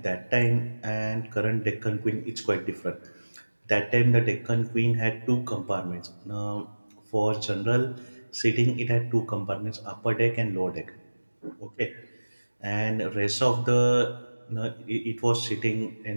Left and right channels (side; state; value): both; inverted; correlation -1.00